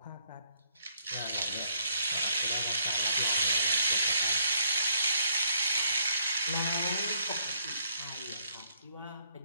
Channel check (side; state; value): both; inverted; correlation -0.69